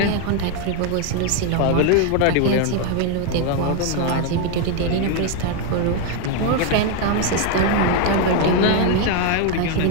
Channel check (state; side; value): different; both; correlation 0.00